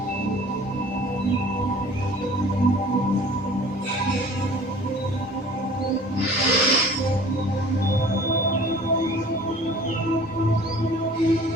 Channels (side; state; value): both; normal; correlation 0.47